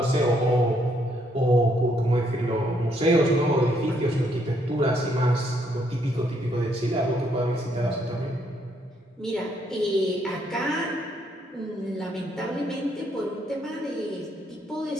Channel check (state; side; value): normal; both; correlation 0.72